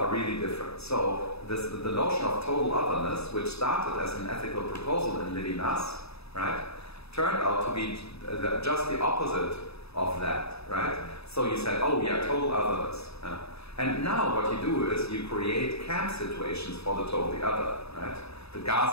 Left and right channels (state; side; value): late; right; 0.78 ms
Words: really different. So the notion of total otherness, which started as an ethical proposal in Levinas, right, turned out to be just the opposite of that, right? So you said, oh yeah, total otherness. And now what you do is you create camp situations for the totally other, right? The